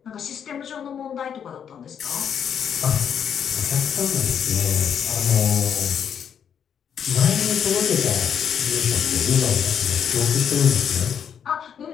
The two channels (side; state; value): right; quieter; 8.1 dB